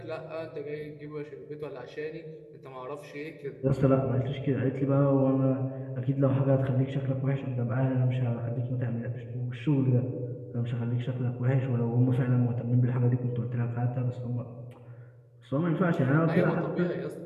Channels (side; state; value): both; identical; correlation 1.00